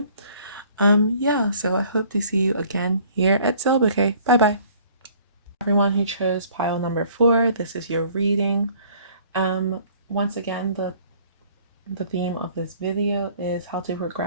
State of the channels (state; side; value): inverted; both; correlation -0.55